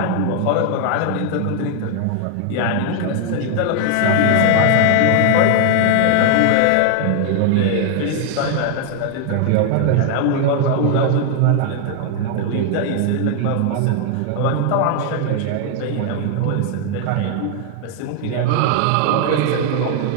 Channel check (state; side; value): different; both; correlation 0.00